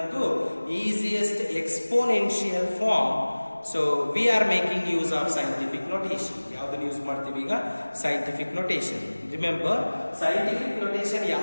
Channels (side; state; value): both; inverted; correlation -1.00